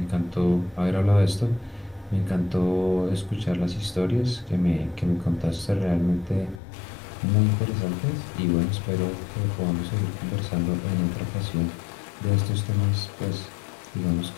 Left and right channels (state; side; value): drops out; right; at 6.6 s